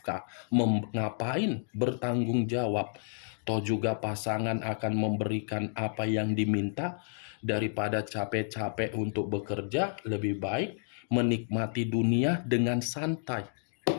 Ngapain bertanggung jawab? Toh juga pasangan akan memberikan apa yang diminta. Daripada capek-capek untuk bekerja, lebih baik menikmati dunia dengan santai.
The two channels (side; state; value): right; silent; digital silence